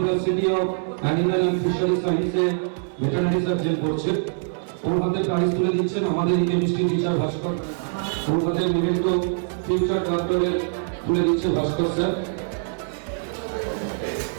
of animal and fishery সায়েন্সে ভেটেরিনারি সার্জন করছে। ওর হাতে প্রাইজ তুলে দিচ্ছেন আমাদের কেমিস্ট্রি টিচার ভাস্কর। ওর হাতে মূলত ফিউচার কন্ট্রোলে তুলে দিচ্ছে ভাস্কর স্যার।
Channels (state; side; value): silent; left; digital silence